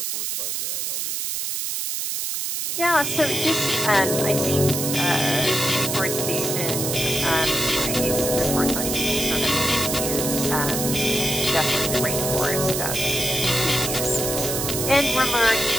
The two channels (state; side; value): noise; right; hiss, 2 dB below the sound